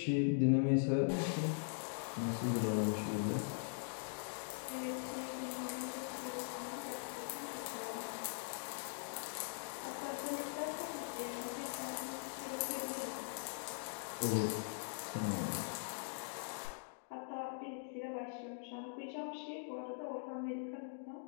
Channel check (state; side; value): silent; right; digital silence